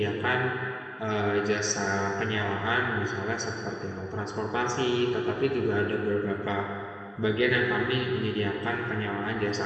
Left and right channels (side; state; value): both; identical; correlation 1.00